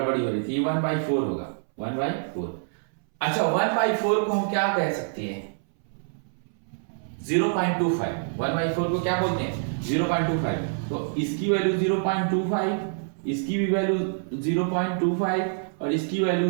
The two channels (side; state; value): left; silent; 61 dB below the other